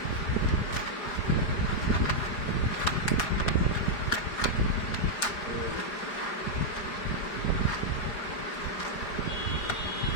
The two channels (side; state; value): right; late; 4.9 ms